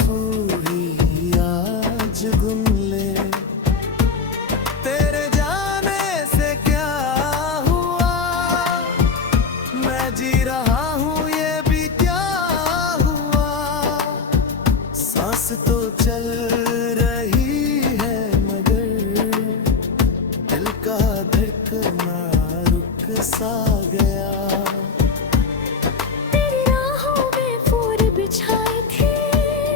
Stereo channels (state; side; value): quieter; right; 5.0 dB